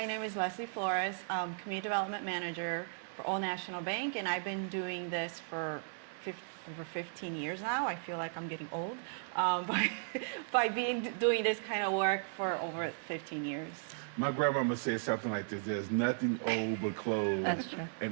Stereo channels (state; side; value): silent; left; digital silence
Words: name is Leslie Florez. I'm Community Development Manager for Old National Bank, and I've been doing this for over 15 years now. I feel like I'm getting old by doing this kind of work for over 15 years. My grandmama said something like this: "There's nothing old but clothes,